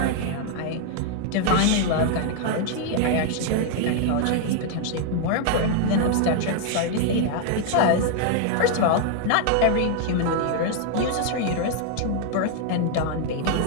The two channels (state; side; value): different; both; correlation 0.00